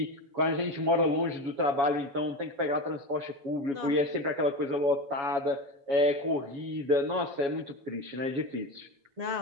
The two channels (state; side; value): late; left; 7.2 ms